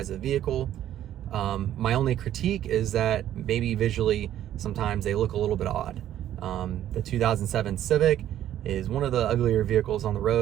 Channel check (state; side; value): quieter; left; 11.7 dB